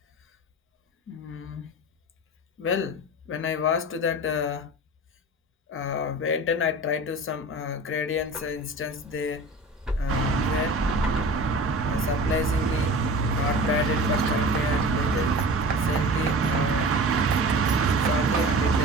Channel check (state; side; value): normal; both; correlation 0.36